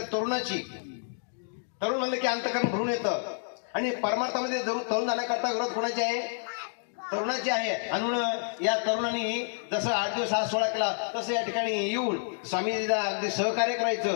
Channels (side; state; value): right; silent; 59 dB below the other